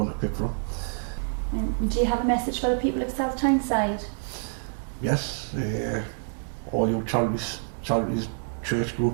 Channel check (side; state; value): left; silent; digital silence